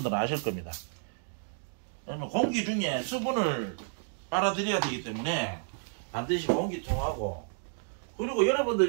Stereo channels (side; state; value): left; silent; digital silence